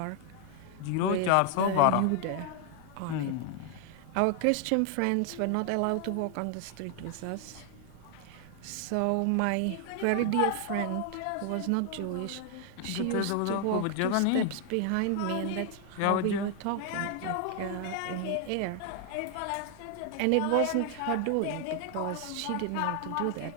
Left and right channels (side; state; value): both; different; correlation 0.00